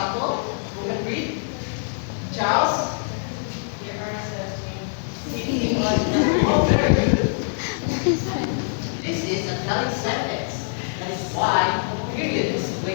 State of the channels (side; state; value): right; silent; digital silence